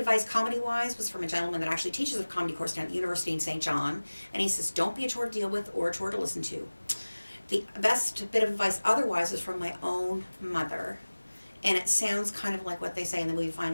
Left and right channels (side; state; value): both; inverted; correlation -1.00